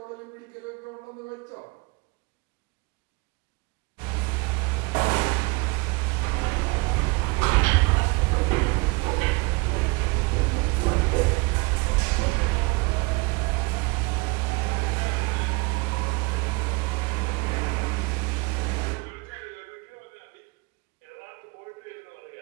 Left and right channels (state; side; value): quieter; left; 26.9 dB